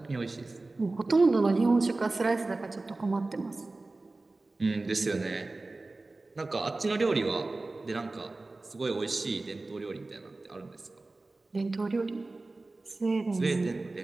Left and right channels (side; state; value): left; quieter; 3.2 dB